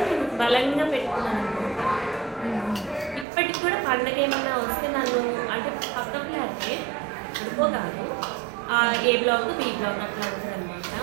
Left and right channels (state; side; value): drops out; left; at 3.2 s